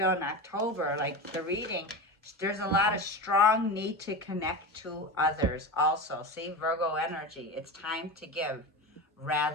in October, like the reading, there's a lot of strong need to connect to others also. See, Virgo energy, it's time to give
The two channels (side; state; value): both; normal; correlation 0.25